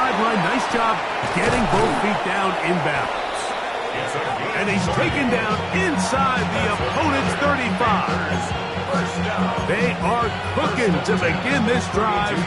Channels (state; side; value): identical; both; correlation 1.00